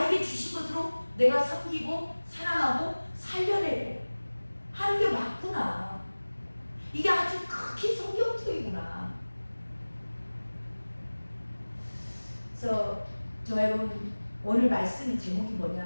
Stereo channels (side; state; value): both; inverted; correlation -1.00